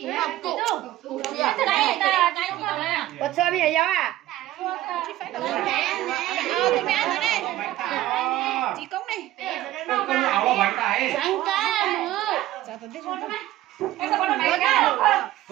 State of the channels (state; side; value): quieter; left; 14.8 dB